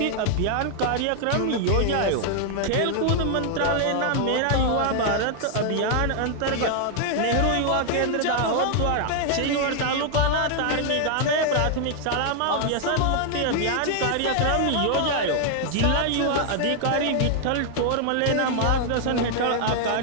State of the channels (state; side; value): different; both; correlation 0.00